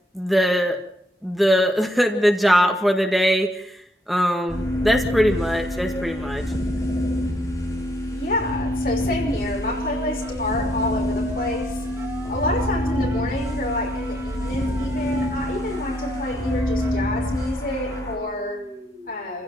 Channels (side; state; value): both; normal; correlation 0.72